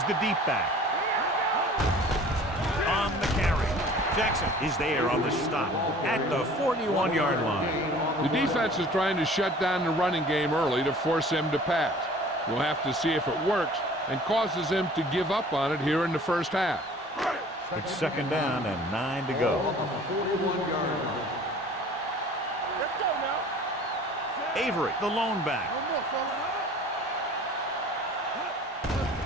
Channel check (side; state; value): both; normal; correlation 0.48